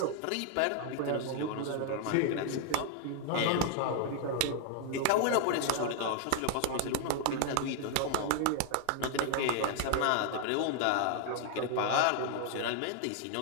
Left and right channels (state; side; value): different; both; correlation 0.00